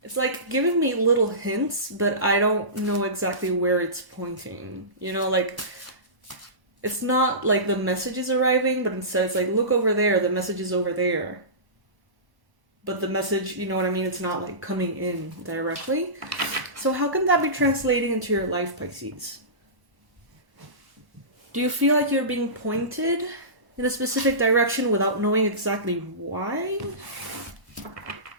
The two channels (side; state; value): left; late; 1.1 ms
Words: It's like giving me little hints, but I don't know exactly where it's pointing. You know, like, it's not like the message is arriving, but instead it's like, look over there, the message is over there. But the message, you know what I mean? It's not like coming in directly. So how can that be translating into your life, Pisces? Do you feel like you're being pointed in a specific direction without knowing exactly why?